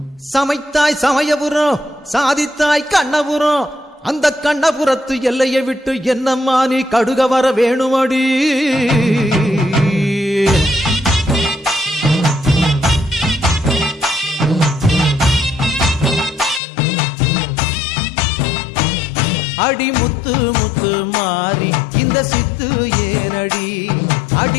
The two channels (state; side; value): drops out; right; at 16.6 s